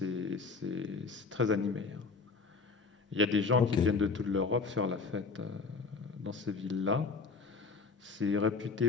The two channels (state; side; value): quieter; right; 4.4 dB